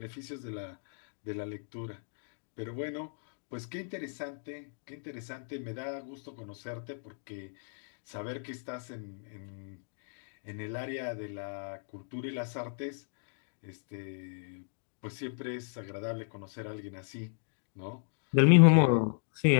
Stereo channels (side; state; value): right; silent; digital silence